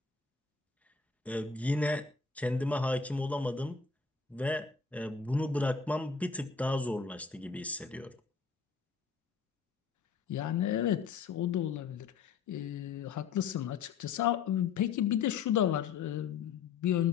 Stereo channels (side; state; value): right; quieter; 5.5 dB